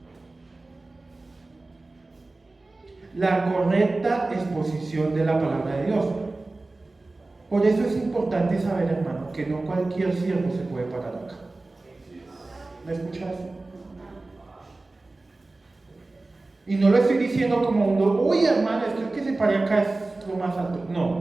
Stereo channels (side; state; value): left; quieter; 3.2 dB